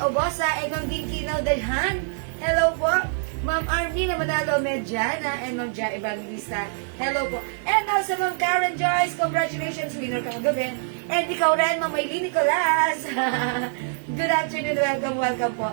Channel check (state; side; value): silent; left; digital silence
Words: Obosa, Egon Ginkinaw Dalhan. Hello po. Ma'am Armina Manalo Medjana and Ma'am Ja Evangelista. Hello po. And also Ma'am Karen Joyce, congratulations, winner ka kagabi. And ikaw rin, Ma'am Maylene Nicolas. Good afternoon, welcome po.